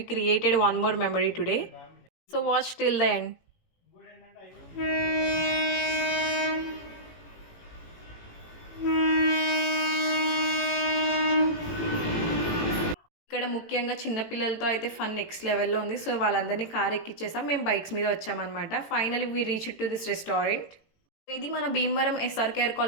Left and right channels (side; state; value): right; late; 18 ms